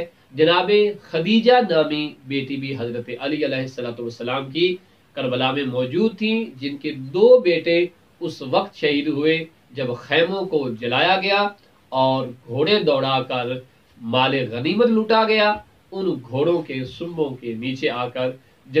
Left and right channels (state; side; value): identical; both; correlation 1.00